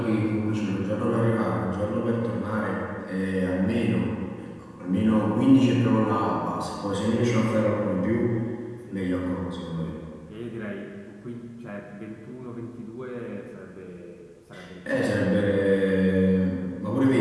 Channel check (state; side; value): identical; both; correlation 1.00